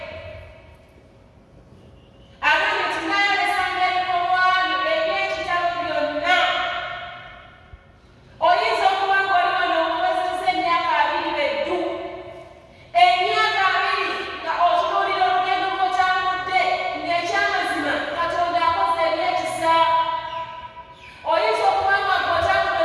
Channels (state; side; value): identical; both; correlation 1.00